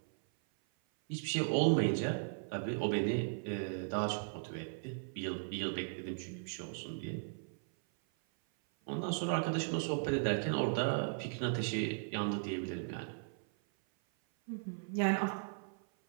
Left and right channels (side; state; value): left; silent; 53 dB below the other